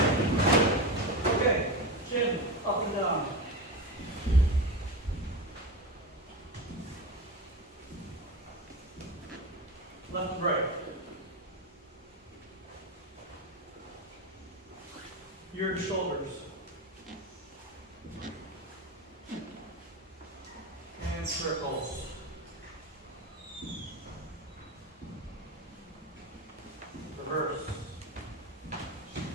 Left and right. Your shoulders. And circles. Reverse.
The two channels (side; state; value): both; normal; correlation 0.22